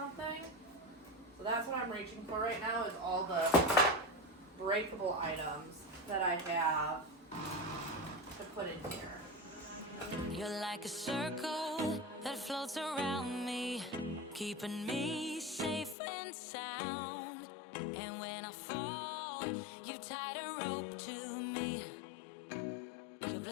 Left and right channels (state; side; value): drops out; right; at 16.0 s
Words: So that's what I'm reaching for right now, is all the breakable items that I have to put in here. You're like a circle that floats around me, keeping me safe and sound. And when I fall, you've tied a rope to me. You're